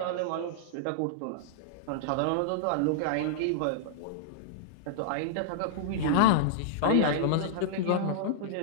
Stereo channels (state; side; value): different; both; correlation -0.02